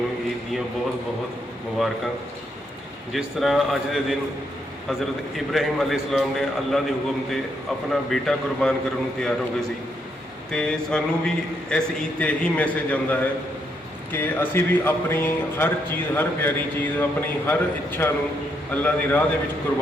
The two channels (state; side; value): normal; both; correlation 0.76